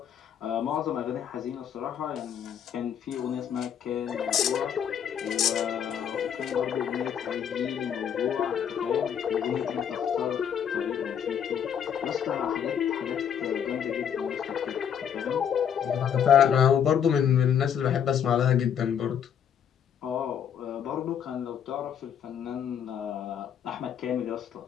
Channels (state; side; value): quieter; right; 8.5 dB